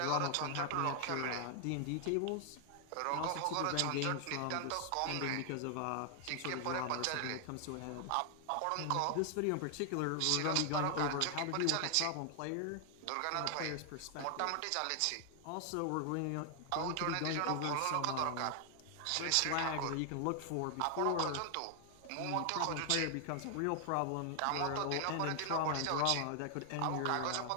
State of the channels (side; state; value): both; different; correlation 0.00